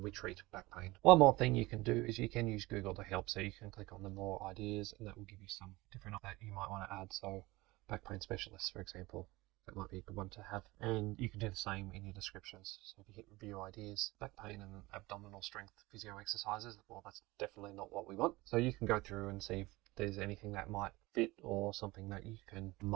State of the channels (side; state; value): left; quieter; 20.9 dB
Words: we treat back pain. One more thing you can do is you can use Google to help. So you can click on the more ideas, and that will give you some different that you might want to add. So back pain specialist, for example, that might be a good one to have. And you can do the same in your descriptions. So if you hit review ideas, back pain and abdominal strength physio exercises, well, that's definitely not what we want. So you can go through and see if there's anything that might fit, or something that you can